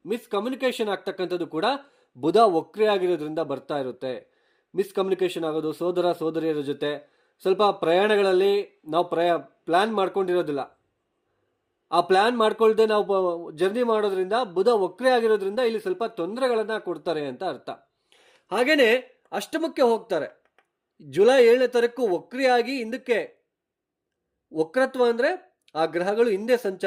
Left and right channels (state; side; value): identical; both; correlation 1.00